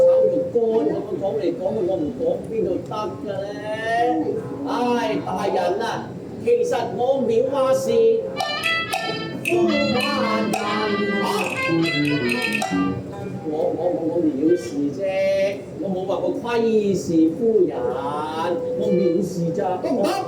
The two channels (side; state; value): both; identical; correlation 1.00